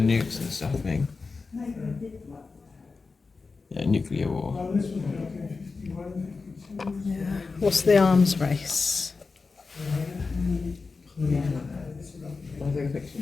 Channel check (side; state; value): right; quieter; 4.3 dB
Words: nukes and stuff? I think. Yeah, nuclear war. Yeah. What's the arms race? I'll take a picture.